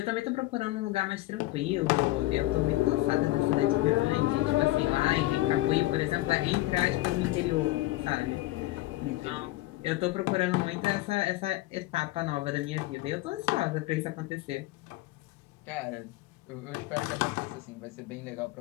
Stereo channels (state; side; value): quieter; right; 18.1 dB